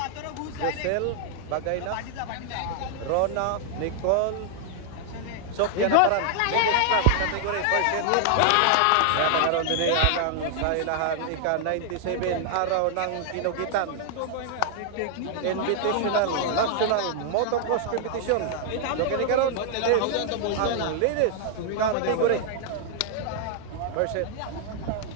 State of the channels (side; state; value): both; different; correlation 0.00